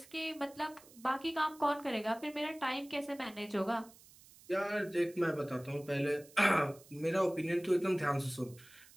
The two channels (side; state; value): right; noise; hiss, 23 dB below the sound